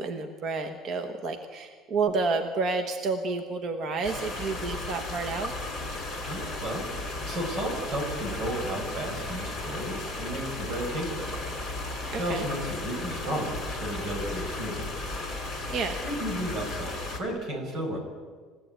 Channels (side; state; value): both; normal; correlation 0.48